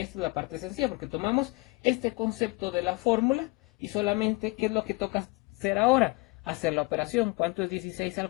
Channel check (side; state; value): right; quieter; 25.0 dB